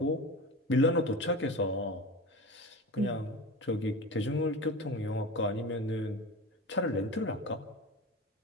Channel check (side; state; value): both; normal; correlation 0.29